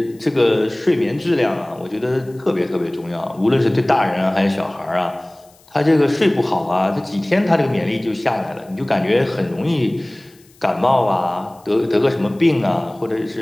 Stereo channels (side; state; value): left; noise; hiss, 29 dB below the sound